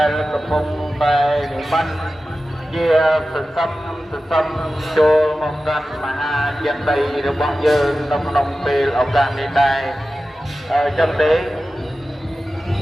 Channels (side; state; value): both; normal; correlation 0.94